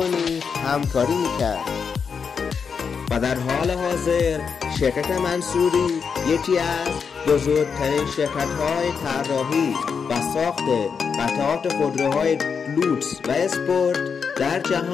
همکاری می‌کرد و در حال حاضر شرکت منصوری یکی از بزرگترین شرکت‌های طراحی و ساخت قطعات خودروهای لوکس و اسپورت در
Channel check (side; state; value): right; quieter; 6.1 dB